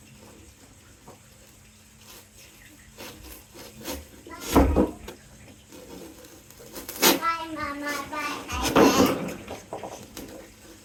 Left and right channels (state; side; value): identical; both; correlation 1.00